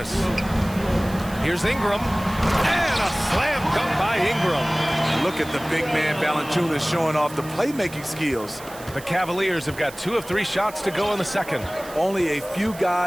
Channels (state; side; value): noise; right; hiss, 17 dB below the sound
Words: Here's Ingram. And a slam dunk by Ingram. Look at the big man Valanciunas showing off the playmaking skills. The Cavaliers have got 2 of 3 shots to go in the second. Only a few